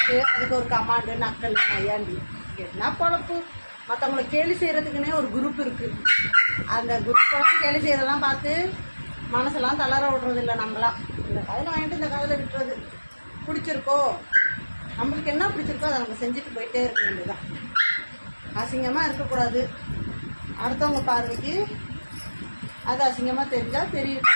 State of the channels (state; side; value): inverted; both; correlation -1.00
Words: அதுக்கு ஒரு கமாண்டு நக்கல் நையாண்டி என்ன பொழப்பு. மற்றவங்களை கேலி செய்கிறதுக்குன்னே ஒரு குரூப் இருக்குது. அந்த குரூப்பெல்லாம் கேலி செய்கிறதெல்லாம் பார்த்து மனசெல்லாம் தளர விடுறது இல்லை. நம்மளாம் இந்த காதில் வாங்கிட்டு இந்த காதில் விட்டுறது. பிடிச்சிருக்கோ, நம்மளுக்கு என்ன பிடிச்சிருக்கோ அதை நம்ம செஞ்சுட்டு போயிட்டே இருக்க வேண்டியதுதான். அசிங்கமாக இருக்கக்கூடாது. அடுத்தவங்க பார்வைக்கு அது அசிங்கமாக தெரிஞ்சால் தெரியும்.